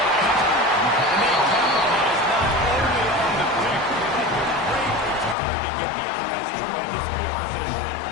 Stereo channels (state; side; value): drops out; right; at 5.4 s